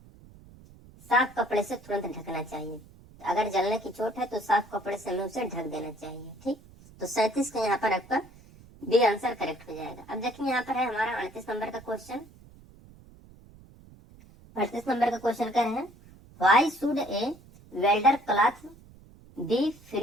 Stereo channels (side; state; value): right; noise; rumble, 23 dB below the sound